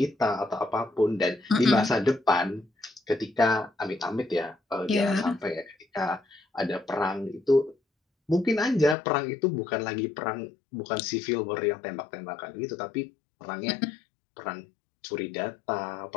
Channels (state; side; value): drops out; right; at 9.0 s